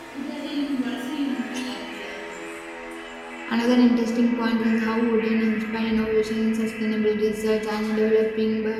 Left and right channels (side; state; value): both; identical; correlation 1.00